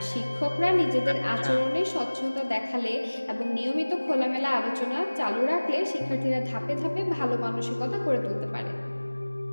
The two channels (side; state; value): both; inverted; correlation -1.00